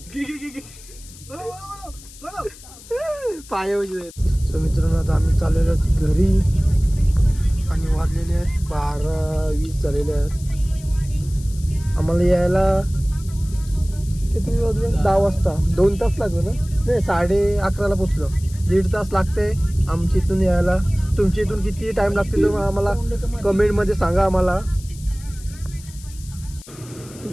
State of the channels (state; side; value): noise; left; hiss, 20 dB below the sound